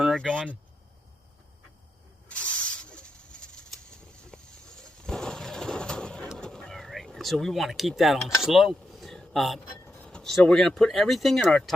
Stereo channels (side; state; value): both; normal; correlation 0.85